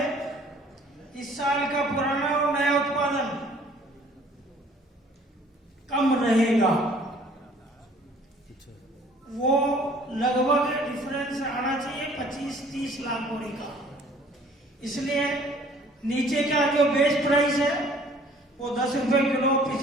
इस साल का पुराना और नया उत्पादन कम रहेगा। वो लगभग डिफरेंस आना चाहिए 25-30 लाख बोरी का। इसलिए नीचे का जो बेस प्राइस है वो 10 रुपए किलो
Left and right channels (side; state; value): both; normal; correlation 0.55